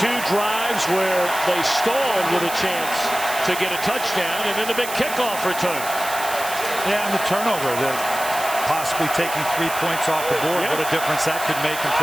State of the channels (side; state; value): right; noise; hiss, 9 dB below the sound